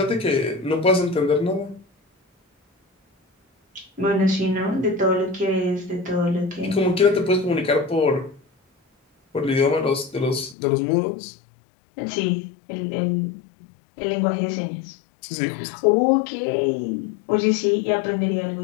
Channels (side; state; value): right; drops out; at 10.6 s